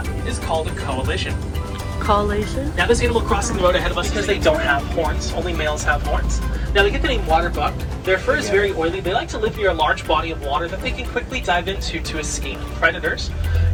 is called a coalition. Collation. Now this animal crossing the road ahead of us because they don't have horns. Only males have horns. Now they get the name water buck. Their fur is very oily. They like to live near a large body of water that they can quickly dive into to escape predators.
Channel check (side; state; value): both; identical; correlation 1.00